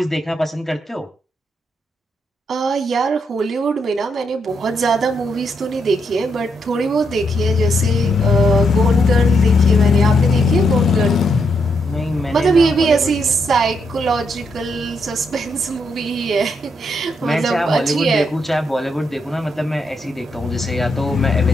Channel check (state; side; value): normal; both; correlation 0.78